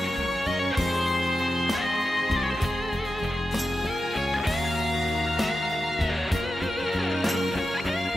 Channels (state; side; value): normal; both; correlation 0.91